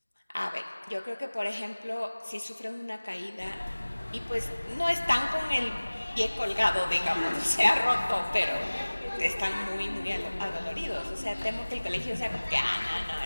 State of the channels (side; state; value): both; inverted; correlation -1.00